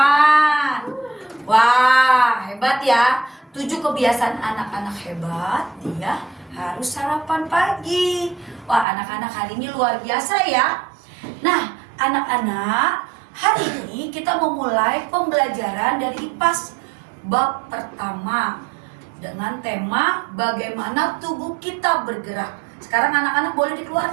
Wah, hebat ya. 7 kebiasaan anak-anak hebat, dia harus sarapan pagi. Wah, anak-anak hari ini luar biasa ya. Nah, anak-anak, hari ini kita memulai pembelajaran dari IPAS bab pertama dengan tema bagaimana tubuh kita bergerak. Sekarang anak-anak boleh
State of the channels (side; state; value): left; drops out; at 8.8 s